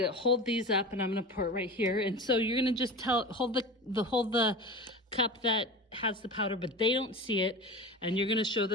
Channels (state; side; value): normal; both; correlation 0.31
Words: hold these up. And I'm going to pour it right here. And so you're going to just hold the cup that has the powder, but they don't see it. And you're going to show